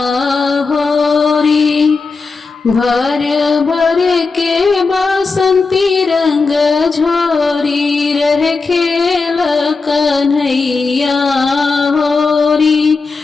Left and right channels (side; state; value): right; quieter; 4.3 dB